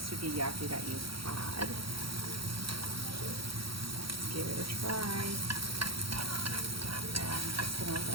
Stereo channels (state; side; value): late; left; 0.75 ms